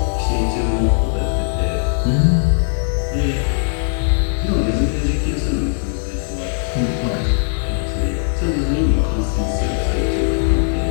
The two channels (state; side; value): silent; right; digital silence